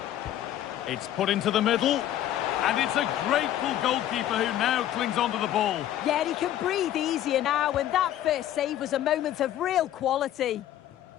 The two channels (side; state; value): right; quieter; 12.2 dB